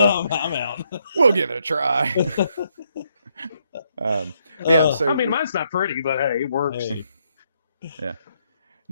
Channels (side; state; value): both; inverted; correlation -0.75